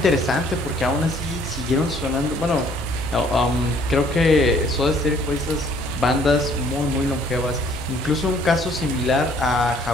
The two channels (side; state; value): both; normal; correlation 0.60